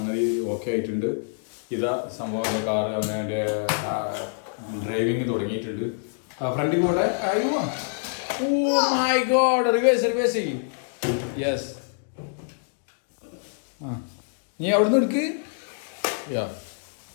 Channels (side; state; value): right; silent; digital silence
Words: ഓക്കെ ആയിട്ടുണ്ട്. ഇതാ സംഭവം കാറ് അവൻ്റെ ഡ്രൈവിങ് തുടങ്ങിയിട്ടുണ്ട്. ഫ്രണ്ടിൽ കൂടെ അയ്യോ, ഓ മൈ ഗോഡ്, റിവേഴ്സ് ചെയ്യും. യെസ്, നീ അവിടുന്ന് എടുക്ക്.